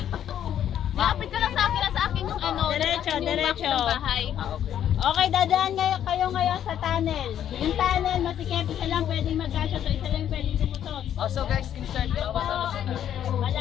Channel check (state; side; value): quieter; right; 10.2 dB